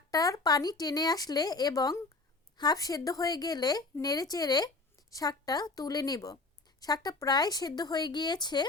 পানি টেনে আসলে এবং হাফ সেদ্ধ হয়ে গেলে নেড়েচেড়ে শাকটা তুলে নেব। শাকটা প্রায় সেদ্ধ হয়ে গিয়েছে।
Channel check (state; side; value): quieter; right; 3.5 dB